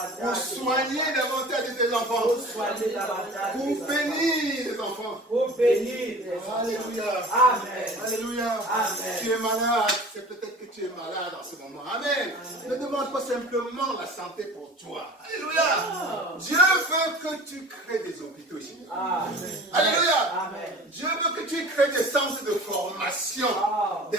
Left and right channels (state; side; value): normal; both; correlation 0.41